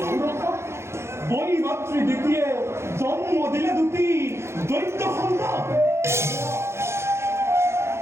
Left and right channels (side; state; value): left; late; 0.13 ms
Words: বই মাতৃ দ্বিতীয় জন্ম দিলে দুটি দৈত্য সন্তান